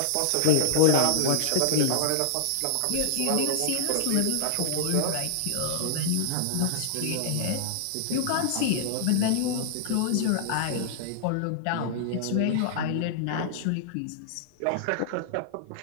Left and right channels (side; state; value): both; different; correlation -0.01